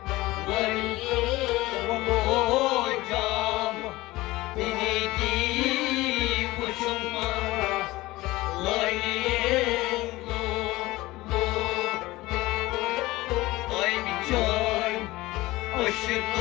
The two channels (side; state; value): right; quieter; 19.3 dB